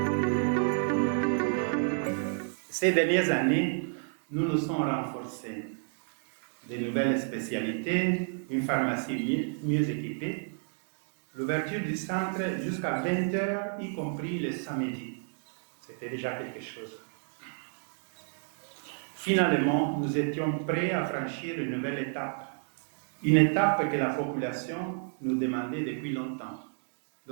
Ces dernières années, nous nous sommes renforcés. De nouvelles spécialités, une pharmacie mieux équipée, l'ouverture du centre jusqu'à 20h, y compris le samedi. C'était déjà quelque chose. Finalement, nous étions prêts à franchir une nouvelle étape. Une étape que la population nous demandait depuis longtemps,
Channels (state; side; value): silent; left; 57 dB below the other